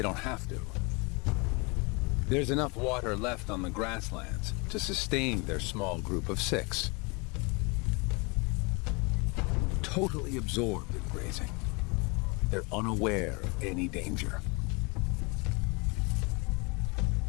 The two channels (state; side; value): quieter; right; 29.1 dB